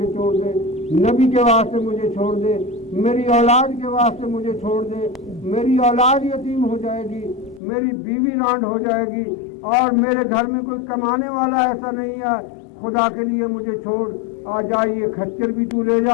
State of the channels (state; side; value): drops out; right; at 7.6 s